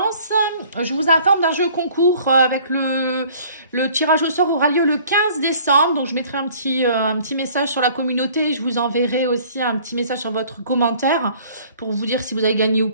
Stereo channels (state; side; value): inverted; both; correlation -0.53